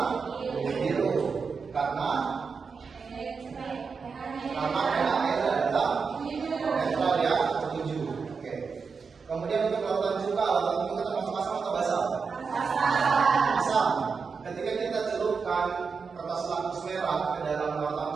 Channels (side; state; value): left; quieter; 5.3 dB